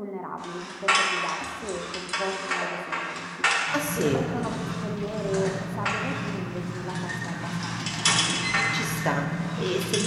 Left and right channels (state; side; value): identical; both; correlation 1.00